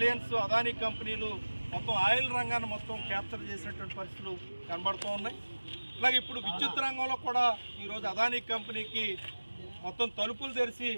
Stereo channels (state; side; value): inverted; both; correlation -1.00